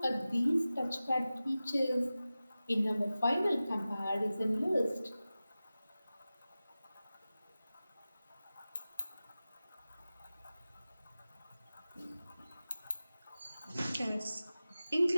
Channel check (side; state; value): both; inverted; correlation -0.96